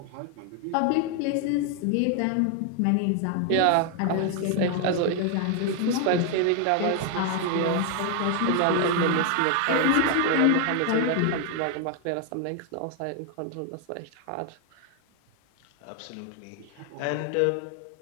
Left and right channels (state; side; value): different; both; correlation 0.00